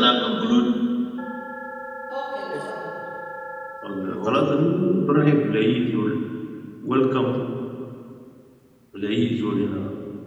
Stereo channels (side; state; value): both; identical; correlation 1.00